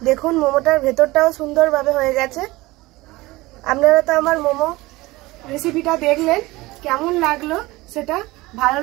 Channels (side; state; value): left; quieter; 20.3 dB